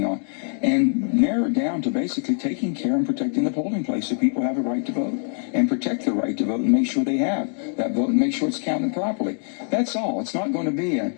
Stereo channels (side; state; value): right; silent; digital silence